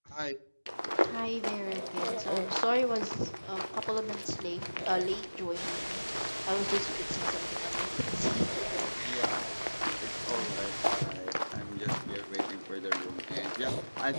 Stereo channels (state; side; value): inverted; both; correlation -1.00